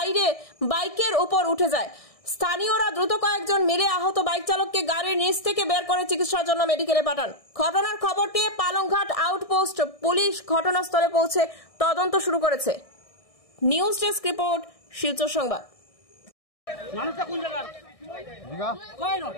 বাইকের উপর উঠে যায়। স্থানীয়রা দ্রুত কয়েকজন মিলে আহত বাইক চালককে গাড়ির নিচ থেকে বের করে চিকিৎসার জন্য মেডিকেলে পাঠান। ঘটনার খবর পেয়ে পালংঘাট আউটপোস্ট পুলিশ ঘটনাস্থলে পৌঁছে তদন্ত শুরু করেছে। নিউজ ডেস্ক রিপোর্ট, শিলচর সংবাদ।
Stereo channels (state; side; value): late; right; 1.6 ms